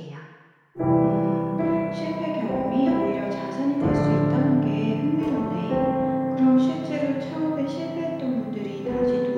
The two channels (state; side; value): identical; both; correlation 1.00